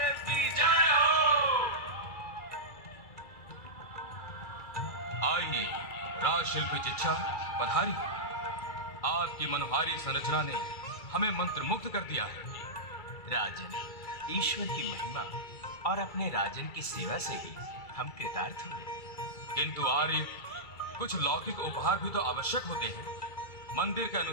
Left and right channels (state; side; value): late; right; 2.4 ms